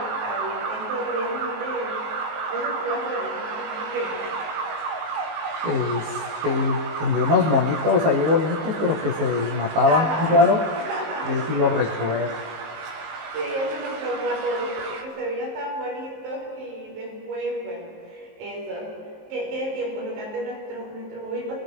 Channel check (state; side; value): late; left; 19 ms